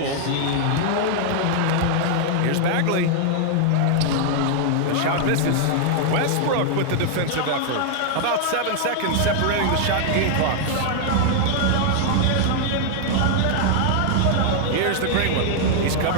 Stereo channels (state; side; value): different; both; correlation 0.00